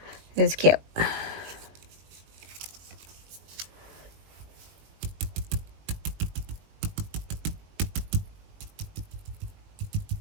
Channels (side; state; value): left; late; 20 ms